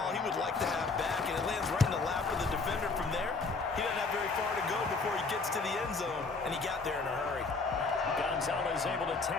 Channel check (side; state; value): right; quieter; 4.1 dB